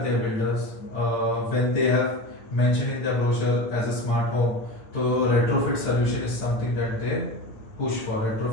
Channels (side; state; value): right; late; 8.7 ms